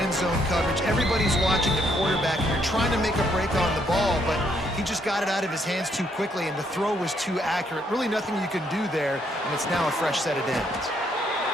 zone coverage. Everybody's watching the quarterback, and you're trying to make a break on the ball, but he just got it out of his hands too quickly, and the throw was too accurate. Really nothing you can do there, and it's now a fresh set of downs.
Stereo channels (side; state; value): both; normal; correlation 0.72